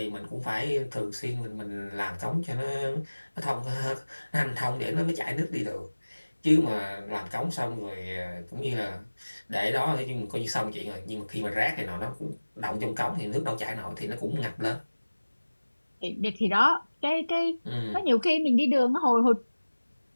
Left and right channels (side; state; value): both; inverted; correlation -1.00